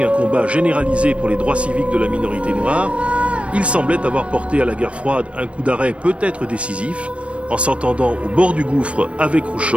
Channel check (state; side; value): late; left; 0.061 ms